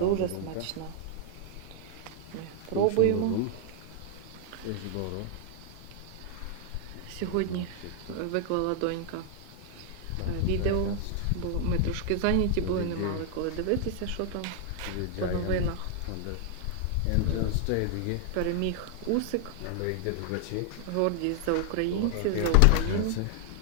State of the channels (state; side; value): different; both; correlation 0.00